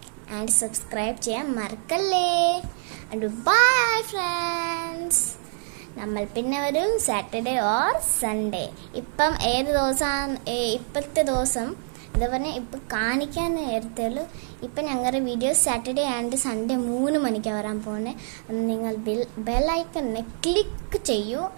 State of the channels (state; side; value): silent; left; 61 dB below the other